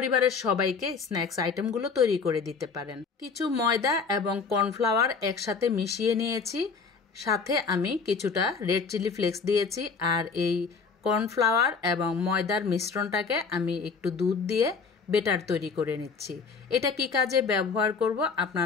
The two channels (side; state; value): right; quieter; 5.1 dB